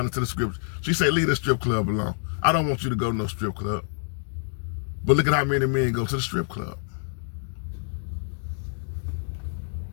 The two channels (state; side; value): silent; right; digital silence